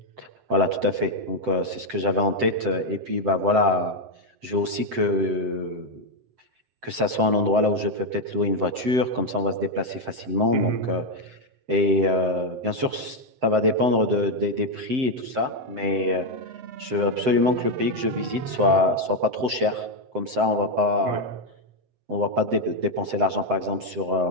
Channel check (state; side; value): late; left; 7.8 ms